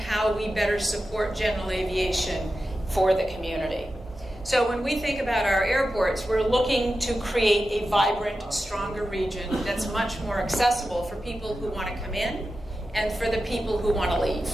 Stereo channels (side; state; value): both; normal; correlation 0.92